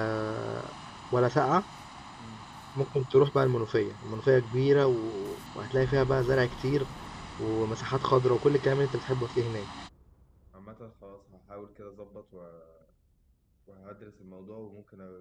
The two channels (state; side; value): identical; both; correlation 1.00